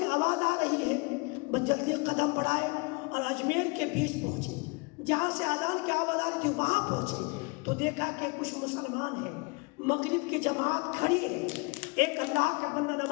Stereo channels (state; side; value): quieter; right; 29.8 dB